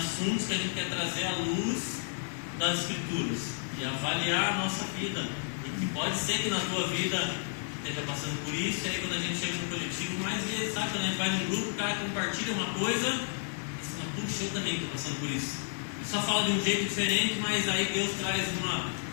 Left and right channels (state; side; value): silent; right; digital silence